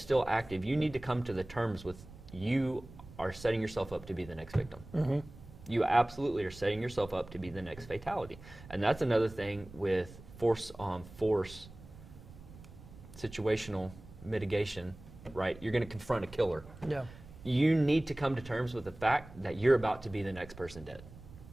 active, you need to come to the terms with you are setting yourself up to be the next victim. You absolutely are setting yourself up to be the next fatality. And that's another thing with force situational mitigation, right? You're going to confront a killer. you need to come to terms with the fact that you're about to be the next person dead.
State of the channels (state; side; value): noise; right; rumble, 18 dB below the sound